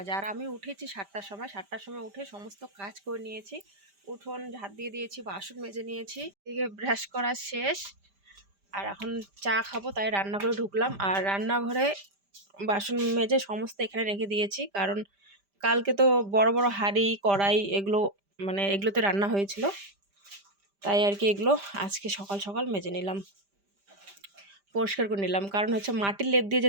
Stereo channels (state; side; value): late; left; 5.0 ms